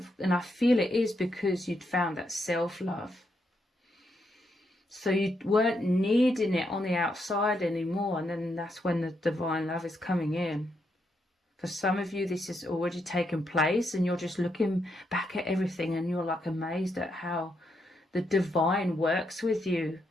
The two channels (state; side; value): normal; both; correlation 0.80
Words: and I feel it is because you'd found that self-love, so you weren't needing it on the outside anymore. And then that's when the divine love is coming in. For some of you, this has already taken place, and you're just looking back at everything and you're like amazed at how the divine works with you